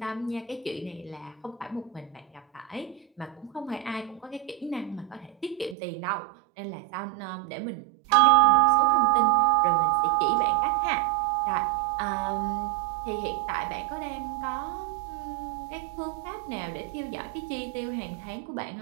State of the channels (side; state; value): left; drops out; at 5.8 s